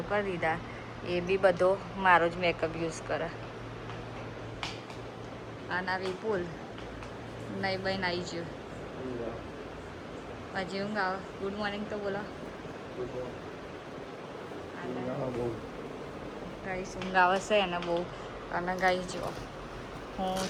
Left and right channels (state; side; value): identical; both; correlation 1.00